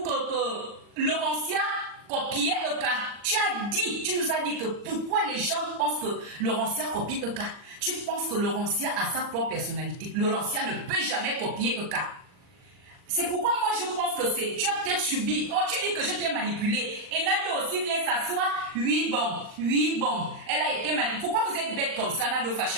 Laurentien copiait Eka, tu nous as dit que pourquoi les gens pensent que Laurentien copie Eka. Tu penses que Laurentia a sa propre personnalité. Laurentia ne peut jamais copier Eka. C'est pourquoi moi je pense que c'est... Tu as peut-être subi. Oh, tu dis que je t'ai manipulé. Et Nado aussi vient s'asseoir. Oui, bon. Elle a été manipulée. Pourquoi vous êtes bête comme ça, Nado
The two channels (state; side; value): late; left; 40 ms